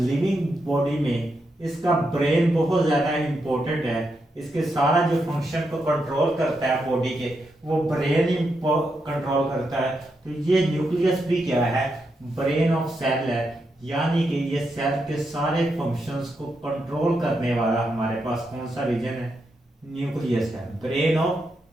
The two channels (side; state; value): both; normal; correlation 0.83